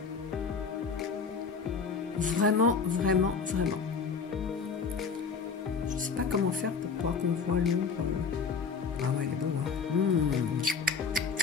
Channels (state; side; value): quieter; right; 5.5 dB